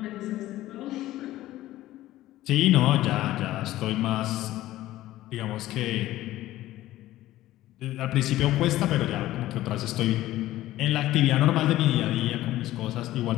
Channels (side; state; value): right; quieter; 15.3 dB